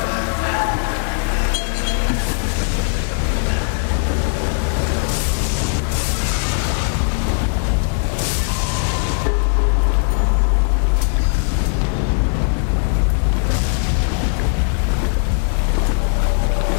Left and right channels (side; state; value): right; silent; 67 dB below the other